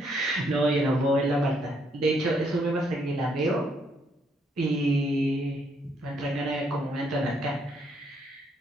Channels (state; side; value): normal; both; correlation 0.72